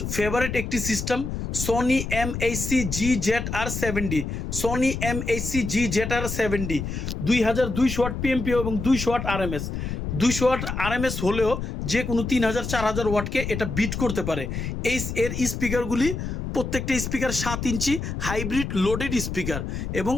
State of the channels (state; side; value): noise; left; rumble, 4 dB below the sound